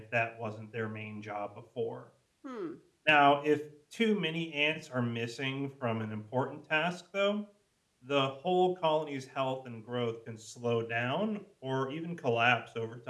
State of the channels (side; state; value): both; identical; correlation 1.00